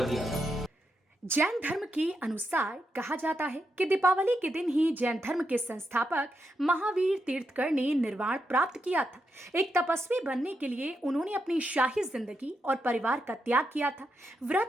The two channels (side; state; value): both; normal; correlation 0.84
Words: दिया था। जैन धर्म के अनुसार कहा जाता है कि दीपावली के दिन ही जैन धर्म के संस्थापक महावीर तीर्थकर ने निर्वाण प्राप्त किया था। एक तपस्वी बनने के लिए उन्होंने अपनी शाही जिंदगी और परिवार का त्याग किया था।